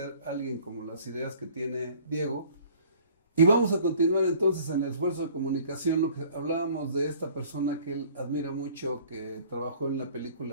a alguien como las ideas que tiene Diego. Y vamos a continuar entonces en el esfuerzo de comunicación, lo que hablábamos de esta persona que él admira mucho, que trabajó en la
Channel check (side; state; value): both; inverted; correlation -0.52